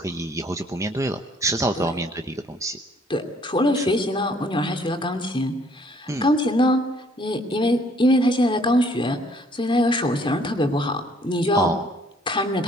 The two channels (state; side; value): normal; both; correlation 0.61